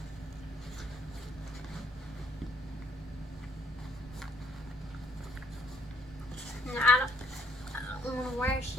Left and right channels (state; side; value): normal; both; correlation 0.67